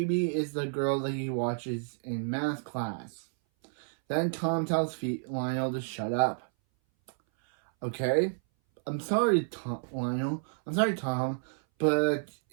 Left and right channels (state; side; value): silent; left; 58 dB below the other